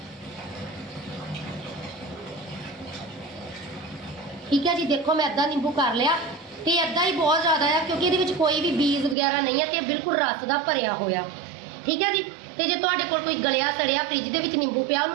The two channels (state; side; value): drops out; left; at 9.2 s